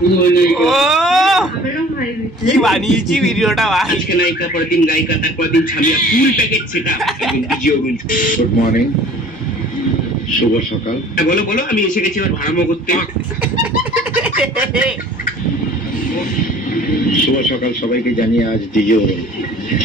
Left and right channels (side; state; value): both; normal; correlation 0.49